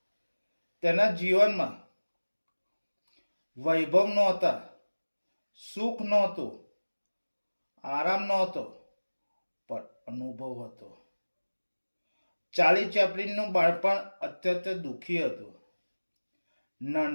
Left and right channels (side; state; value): both; inverted; correlation -1.00